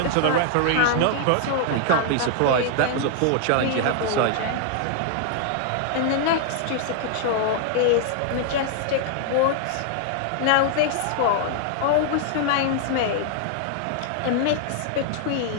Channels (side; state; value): both; different; correlation 0.00